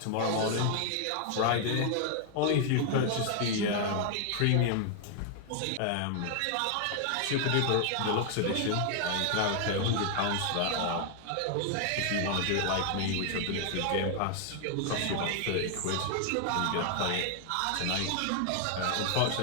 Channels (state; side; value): different; both; correlation 0.00